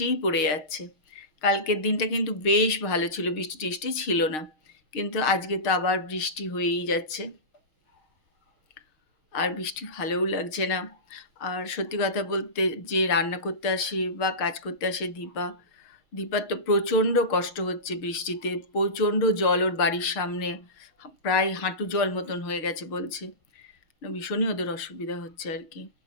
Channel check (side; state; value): right; late; 6.5 ms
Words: পড়ে যাচ্ছে। কালকের দিনটা কিন্তু বেশ ভালো ছিল, বৃষ্টি টিষ্টি ছিল না, কিন্তু আজকে তো আবার বৃষ্টি হয়েই যাচ্ছে। আর বৃষ্টি ভালোও লাগছে না। আর সত্যি কথা বলতে, যে রান্না করতে আসে বা কাজ করতে আসে দীপার তো প্রচণ্ড কষ্ট হচ্ছে বৃষ্টিতে। প্রচণ্ড জল ওর বাড়ির সামনে, প্রায় হাঁটু জল মতন হয়ে গেছে বলছে। ভীষণই ওদের অসুবিধা হচ্ছে আর কি।